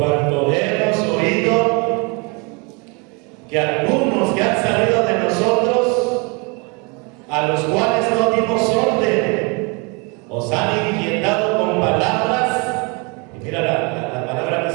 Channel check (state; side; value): quieter; left; 31.1 dB